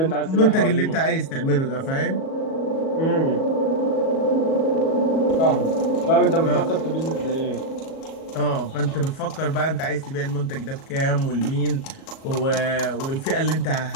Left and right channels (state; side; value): late; right; 37 ms